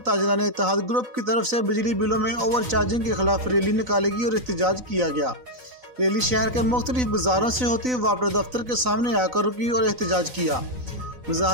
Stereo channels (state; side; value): late; left; 4.0 ms